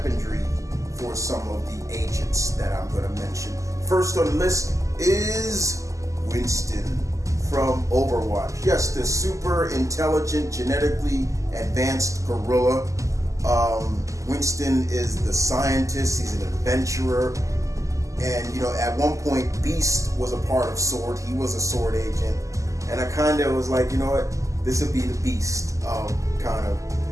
for some of the agents that I'm going to mention. First on the list is Winston from Overwatch. Yes, the super intelligent, genetically advanced gorilla. Winston is the scientist. He's an adventurer. And, at one point, Beast was a part of S.W.O.R.D. He was a S.W.O.R.D. agent. And I kind of was like, you know what? This would be the Beast, kind of.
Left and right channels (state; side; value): late; left; 0.16 ms